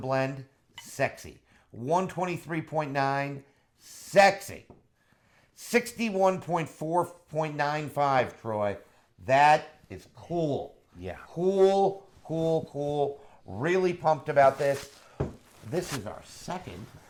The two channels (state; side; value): identical; both; correlation 1.00